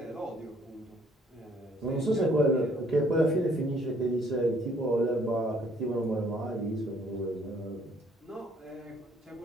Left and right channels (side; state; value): both; normal; correlation 0.63